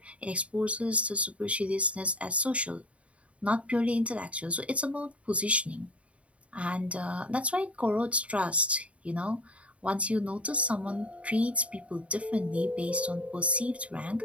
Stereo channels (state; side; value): late; left; 0.064 ms